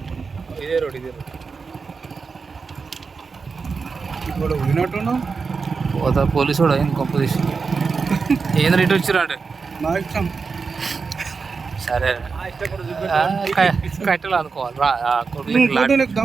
ఇదే రోడ్ ఇప్పుడు వినట్టున్నావు పోతా పోలీసు కూడా అయింది కొంప తీసి ఏం రేటు వచ్చిరా అంటే నా ఇష్టం సరే కట్టెలు అనుకోవాలి రా నీకు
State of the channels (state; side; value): quieter; left; 4.9 dB